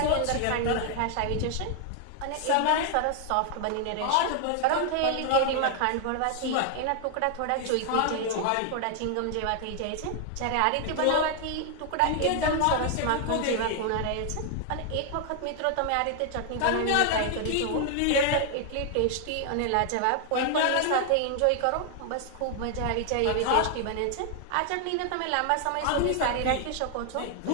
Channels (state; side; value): different; both; correlation 0.00